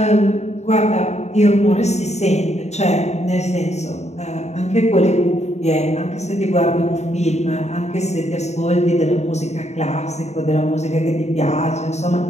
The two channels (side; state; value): right; late; 0.32 ms